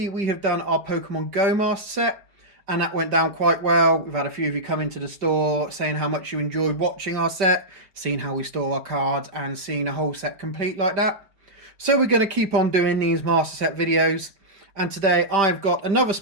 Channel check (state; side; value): late; left; 5.1 ms